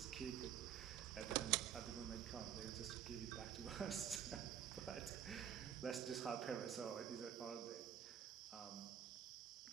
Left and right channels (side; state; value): left; quieter; 9.4 dB